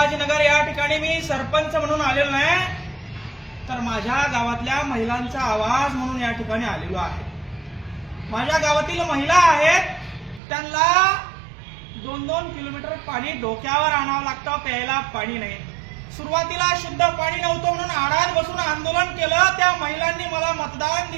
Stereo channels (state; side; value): drops out; left; at 10.4 s